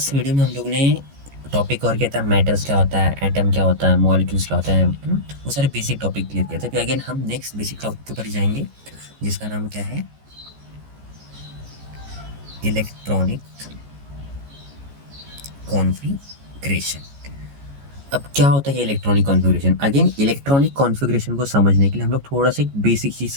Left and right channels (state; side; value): late; left; 14 ms